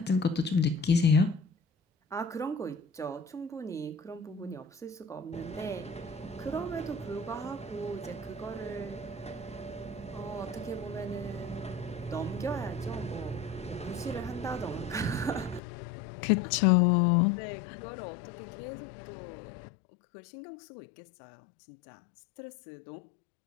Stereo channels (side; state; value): right; drops out; at 15.6 s